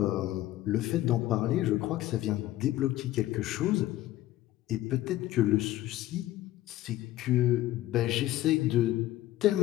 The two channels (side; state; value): right; quieter; 15.2 dB